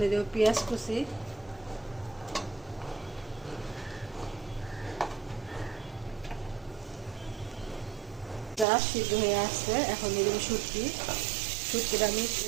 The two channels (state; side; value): drops out; left; at 8.7 s